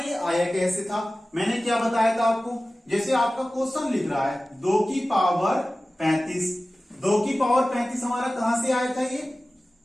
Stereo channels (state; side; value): normal; both; correlation 0.96